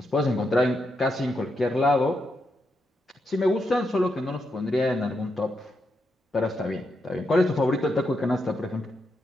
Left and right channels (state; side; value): normal; both; correlation 0.83